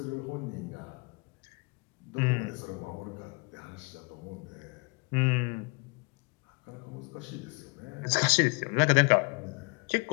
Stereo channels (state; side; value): quieter; right; 31.4 dB